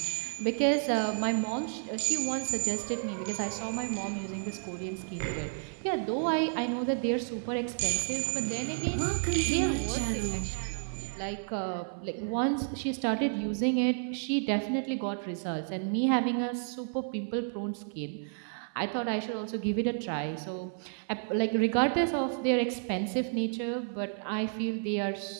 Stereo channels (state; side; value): silent; left; 57 dB below the other